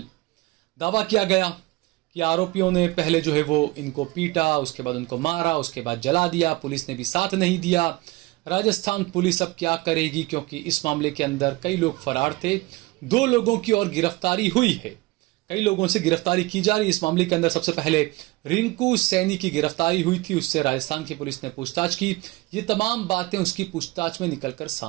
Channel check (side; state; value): left; quieter; 21.7 dB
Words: दावा किया गया कि आरोपियों ने पहले जो है वो इनको पीटा, उसके बाद उनको मारा, उसके बाद जला दिया, पुलिस ने भी साथ नहीं दिया। राजस्थान पुलिस अब क्या करेगी, क्योंकि इस मामले के अंदर कई लोग फरार थे, 2 लोगों की और गिरफ्तारी हुई है, कई लोगों से गिरफ्तारी की जा रही है। इस मामले के अंदर सबसे पहले रिंकू सैनी की गिरफ्तारी हुई थी, उससे राजस्थान की पुलिस ने पूछताछ की। ये तमाम बातें उसकी पूछताछ में निकलकर